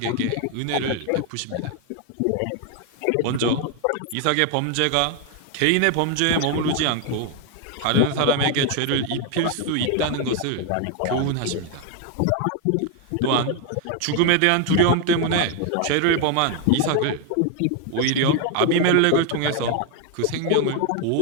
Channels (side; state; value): both; different; correlation 0.01